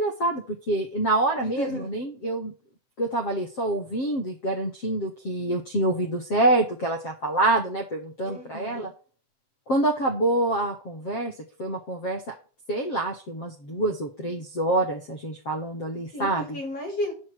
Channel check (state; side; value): late; right; 7.5 ms